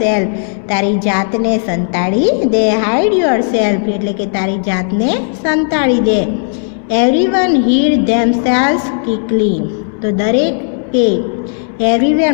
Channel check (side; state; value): right; silent; digital silence